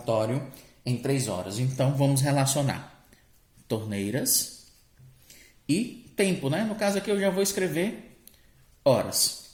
em 3 horas. Então vamos relacionar torneiras e tempo, né? No caso aqui eu já vou escrever horas,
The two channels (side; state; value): both; identical; correlation 1.00